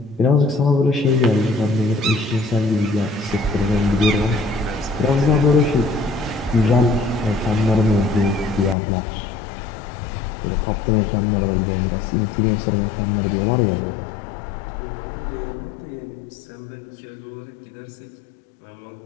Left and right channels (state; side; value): drops out; right; at 8.8 s